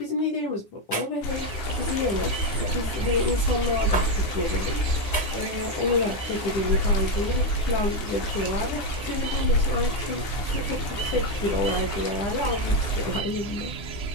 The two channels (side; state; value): right; late; 9.8 ms